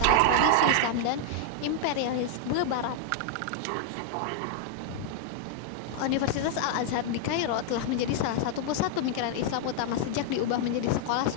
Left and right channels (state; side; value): different; both; correlation -0.01